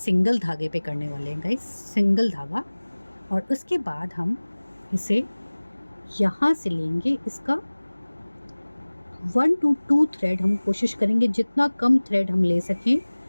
धागे पे करने वाले हैं गाइस, सिंगल धागा। और उसके बाद हम इसे यहाँ से लेंगे, इसका 1 to 2 थ्रेड हम कोशिश करेंगे, जितना कम थ्रेड हम ले सकें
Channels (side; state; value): both; inverted; correlation -1.00